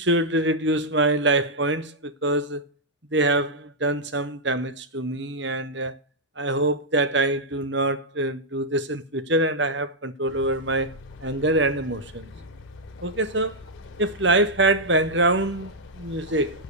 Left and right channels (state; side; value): normal; both; correlation -0.06